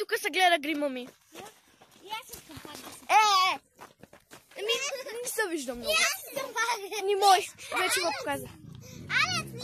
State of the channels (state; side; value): identical; both; correlation 1.00